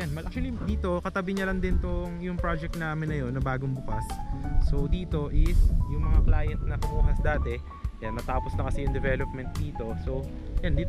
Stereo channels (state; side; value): identical; both; correlation 1.00